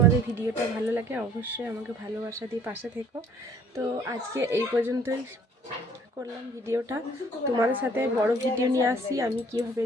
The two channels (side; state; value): both; normal; correlation 0.57